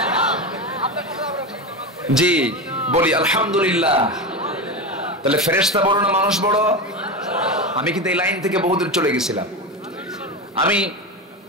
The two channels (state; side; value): normal; both; correlation 0.20